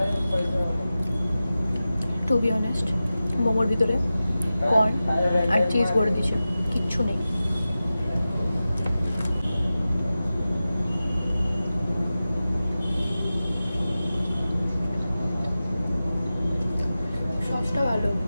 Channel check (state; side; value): inverted; both; correlation -0.94